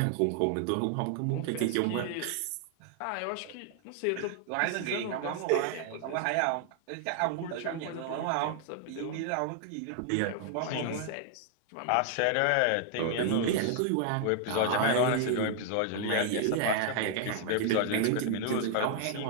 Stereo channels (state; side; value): different; both; correlation 0.00